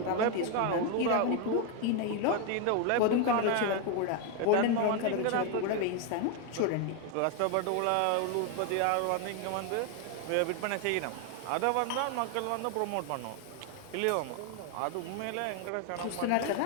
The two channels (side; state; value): both; different; correlation 0.01